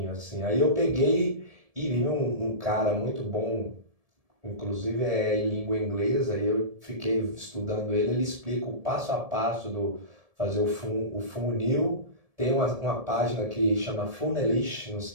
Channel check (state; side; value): late; left; 1.7 ms